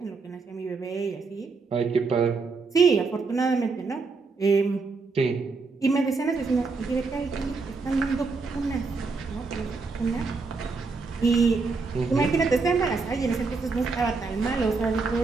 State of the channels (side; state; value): left; quieter; 4.3 dB